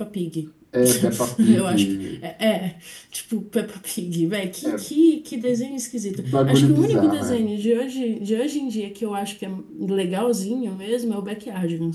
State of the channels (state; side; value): identical; both; correlation 1.00